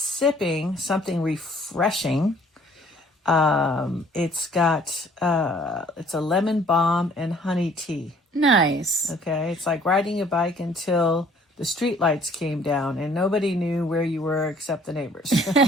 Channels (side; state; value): both; normal; correlation 0.57